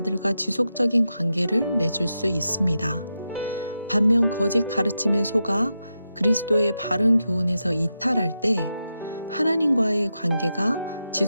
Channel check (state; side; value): inverted; both; correlation -0.88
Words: 지속적인 관계를 맺을 수 있습니다. 반면 거짓 가르침에 속아 그리스도의 바른 교훈에서 이탈할 때 하나님과의 관계가